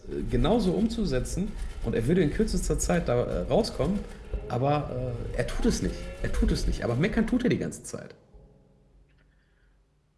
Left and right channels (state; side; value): identical; both; correlation 1.00